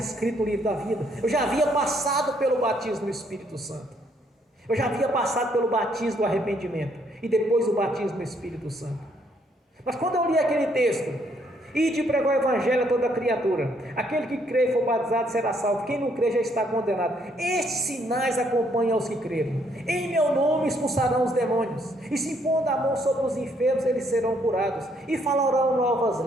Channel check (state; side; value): normal; both; correlation 0.69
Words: no livro da vida, eu já havia passado pelo batismo do Espírito Santo, eu já havia passado pelo batismo do arrependimento, e depois o batismo do Espírito Santo. Mas quando eu li aquele texto, ide pregar o evangelho a toda criatura, aquele que crê e for batizado será salvo, quem não crê já está condenado. Estes sinais acompanham os que creram, em meu nome expulsarão os demônios, e se impondo a mão sobre os enfermos eles serão curados, e falarão